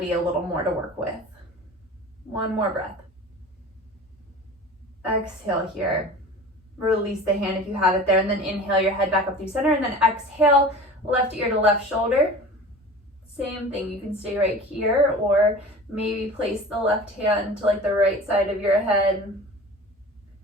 a little more to work with. One more breath. Exhale here. Release the hand if you have it there, and then inhale your head back up through center, and then exhale, left ear to left shoulder. Same thing, you can stay right here, or maybe place the left hand to like the right side of your head.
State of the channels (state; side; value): normal; both; correlation 0.38